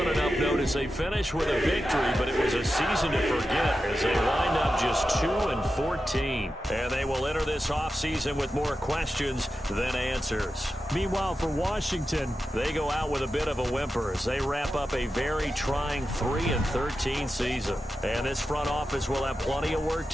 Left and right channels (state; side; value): normal; both; correlation 0.91